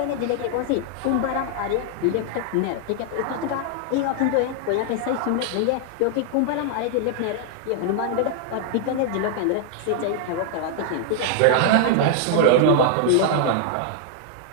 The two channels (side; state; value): both; different; correlation 0.00